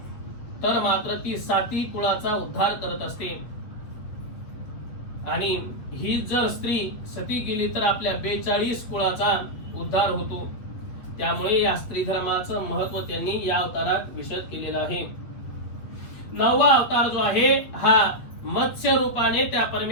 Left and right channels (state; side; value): late; right; 8.3 ms